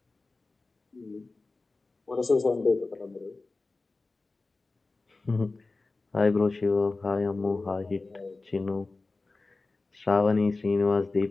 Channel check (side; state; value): right; quieter; 3.5 dB